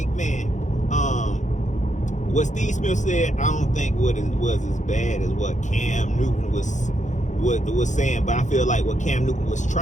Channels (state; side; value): late; right; 0.35 ms